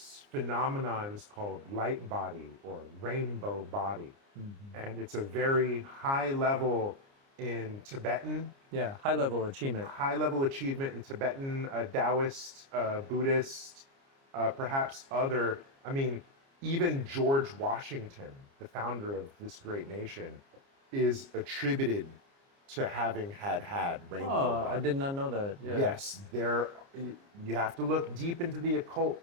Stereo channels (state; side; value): late; left; 29 ms